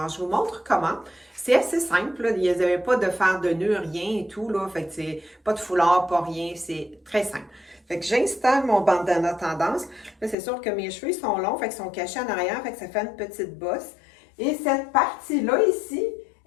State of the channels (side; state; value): right; drops out; at 10.4 s